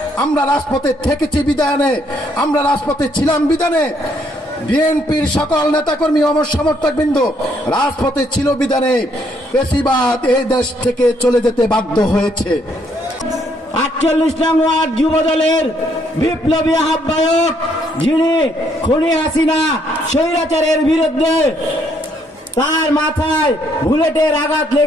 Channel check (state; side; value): normal; both; correlation 0.70